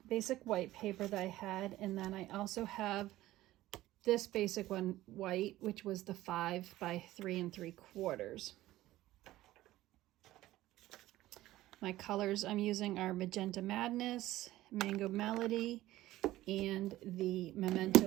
basic white paper that I had, and then I also have this basic one white, which was the 5 by 3 3/4. My colors I'm using are Magenta Madness, Mango Melody, and the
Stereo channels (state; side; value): quieter; left; 15.9 dB